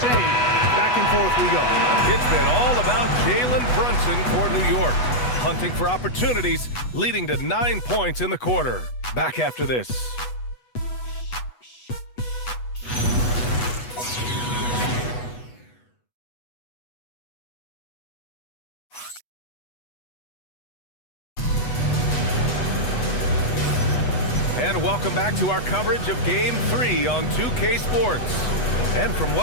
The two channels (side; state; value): right; late; 8.1 ms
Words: Back and forth we go. It's been all about Jalen Brunson for New York. Hunting for opportunities, leading to 9 points in the quarter. Back after this. And welcome back to our coverage of Game 3 on 2K Sports. And from